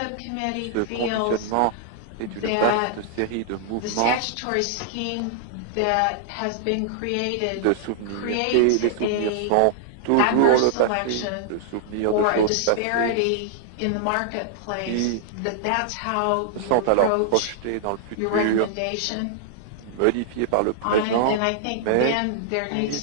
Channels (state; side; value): different; both; correlation -0.01